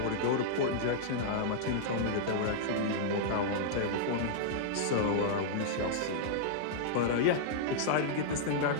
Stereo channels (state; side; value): different; both; correlation -0.02